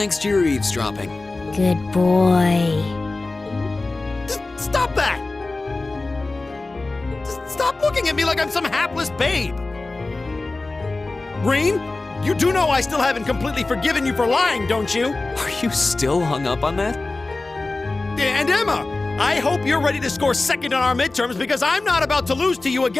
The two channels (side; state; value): right; quieter; 3.3 dB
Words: to your eavesdropping. Good boy. Stop that! Stop looking at me like I'm some hapless babe! Rain, you do know I still haven't completely forgiven you for lying, don't you? Are you still hung up on that? And Emma, I hope you're ready to score second on our midterms because I'm not about to lose to you